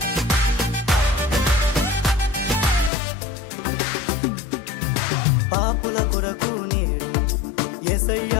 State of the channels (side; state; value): right; drops out; at 2.9 s